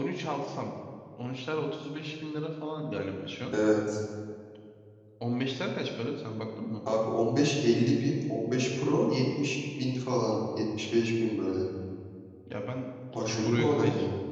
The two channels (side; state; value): both; identical; correlation 1.00